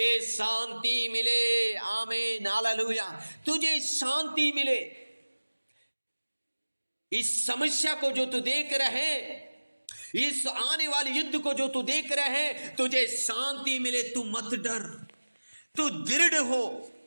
शांति मिले। आमीन, हालेलुया। तुझे शांति मिले। इस समस्या को जो तू देख रहे हैं, इस आने वाले युद्ध को जो तू देख रहे हैं, तुझे शांति मिले। तू मत डर, तू दृढ़ हो,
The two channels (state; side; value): inverted; both; correlation -1.00